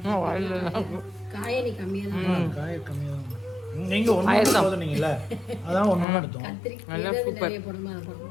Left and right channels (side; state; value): right; drops out; at 6.1 s